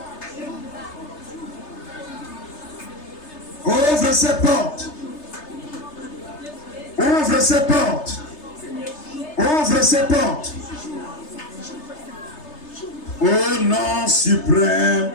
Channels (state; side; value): late; right; 3.3 ms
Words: Ouvre ces portes. Ouvre ces portes. Ouvre ces portes. Au nom suprême